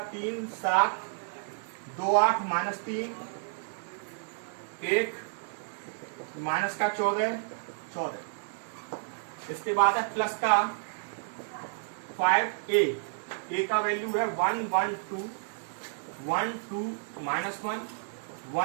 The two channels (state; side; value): silent; left; 57 dB below the other